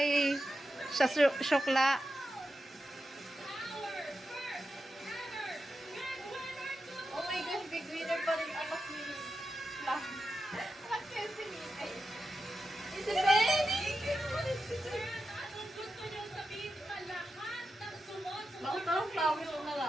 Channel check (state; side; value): normal; both; correlation 0.90